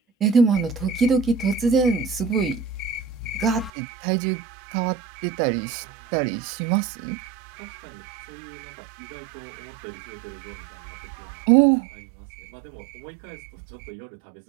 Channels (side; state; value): left; drops out; at 3.7 s